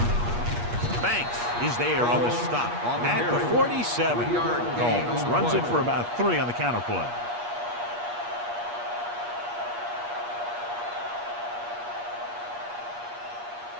Banks is there on the stop at the 47. Combs runs it for about 3 on the counterplay.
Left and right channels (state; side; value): late; left; 8.4 ms